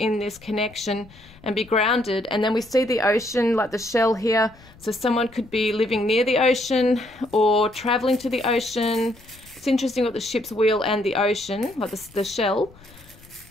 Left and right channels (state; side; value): noise; left; rumble, 24 dB below the sound